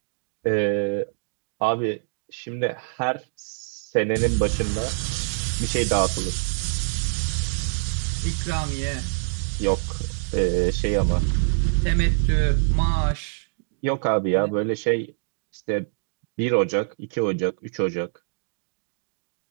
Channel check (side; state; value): left; silent; digital silence